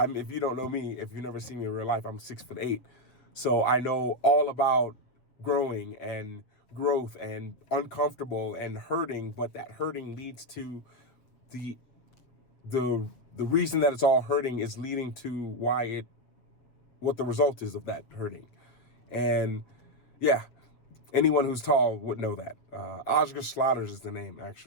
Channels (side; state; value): right; late; 7.8 ms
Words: you don't know me, if you've never seen me in real life, I'm 6'8". So I know all about growing and growth and uncomfortable and hurting, but that hurting leads to the reason that it's all hurting is leading to what the result is of that hurting. And yeah, anyone who's tall would know that. Oscar Slaughters is the name,